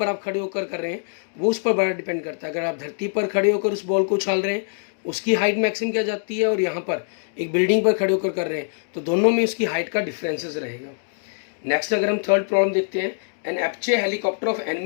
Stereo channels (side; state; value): right; silent; digital silence